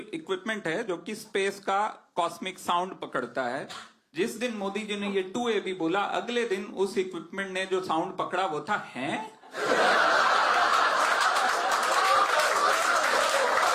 है जो कि स्पेस का कॉस्मिक साउंड पकड़ता है, जिस दिन मोदी जी ने ये 2AB बोला, अगले दिन उस इक्विपमेंट ने जो साउंड पकड़ा वो था हैं।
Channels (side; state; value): both; identical; correlation 1.00